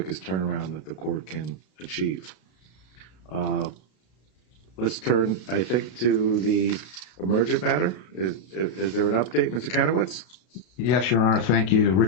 turnaround that the court can achieve. Let's turn, I think, to the emergent matter. Is there an update, Mr. Kanowitz? Yes, Your Honor. Thank you.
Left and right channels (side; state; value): right; late; 32 ms